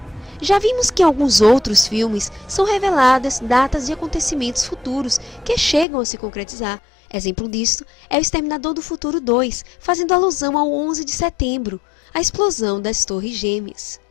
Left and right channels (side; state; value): right; drops out; at 5.9 s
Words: Já vimos que em alguns outros filmes são reveladas datas de acontecimentos futuros que chegam a se concretizar. Exemplo disto é o Exterminador do Futuro 2, fazendo alusão ao 11 de setembro, a explosão das Torres Gêmeas.